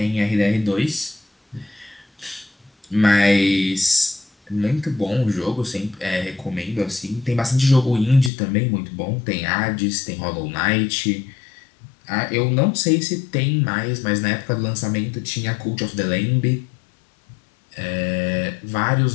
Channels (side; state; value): right; drops out; at 8.3 s